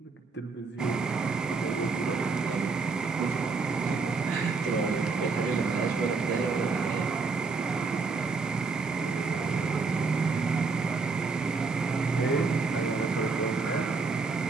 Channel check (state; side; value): quieter; left; 4.5 dB